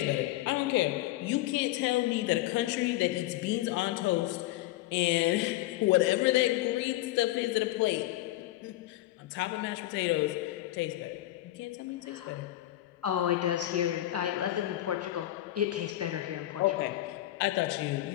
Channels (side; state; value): right; quieter; 15.8 dB